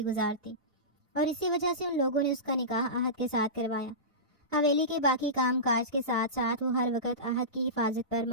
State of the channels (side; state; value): both; normal; correlation -0.20